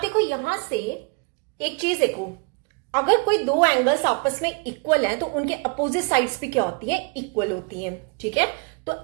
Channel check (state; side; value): quieter; left; 33.7 dB